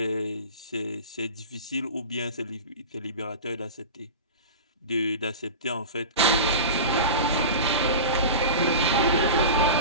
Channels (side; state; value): both; inverted; correlation -0.30